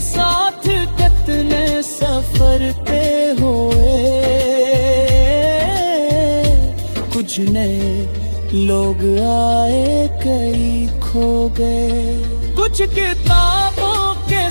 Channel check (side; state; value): both; inverted; correlation -1.00